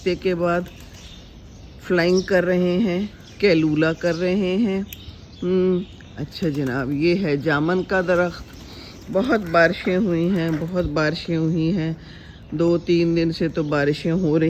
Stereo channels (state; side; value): identical; both; correlation 1.00